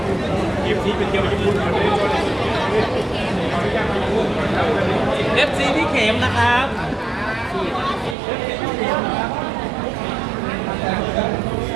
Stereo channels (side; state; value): left; drops out; at 8.2 s